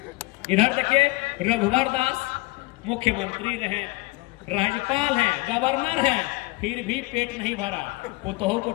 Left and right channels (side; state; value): right; quieter; 23.6 dB